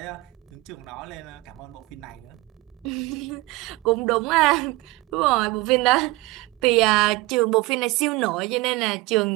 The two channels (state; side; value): quieter; left; 21.3 dB